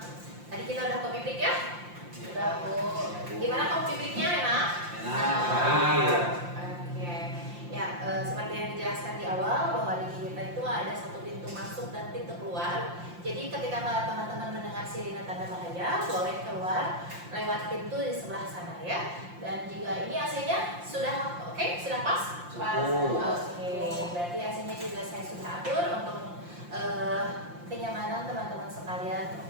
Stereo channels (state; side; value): late; left; 5.7 ms